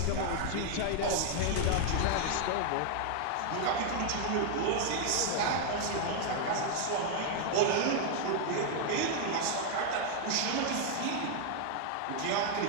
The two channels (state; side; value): different; both; correlation 0.00